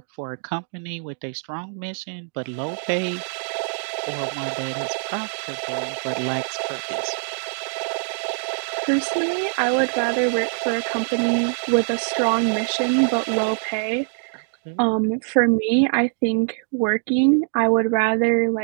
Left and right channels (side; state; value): left; silent; 63 dB below the other